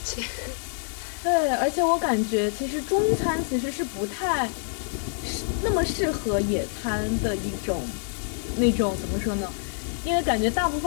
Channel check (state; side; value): silent; right; digital silence